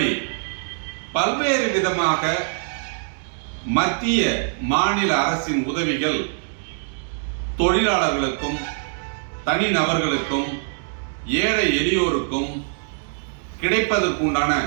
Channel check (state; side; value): silent; left; 63 dB below the other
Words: பல்வேறு விதமாக மத்திய மாநில அரசின் உதவிகள் தொழிலாளர்களுக்கும், தனிநபர்களுக்கும், ஏழை எளியோருக்கும் கிடைப்பதற்குண்டான